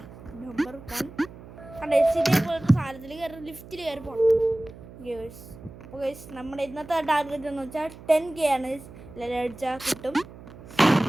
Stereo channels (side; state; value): right; noise; hum, 17 dB below the sound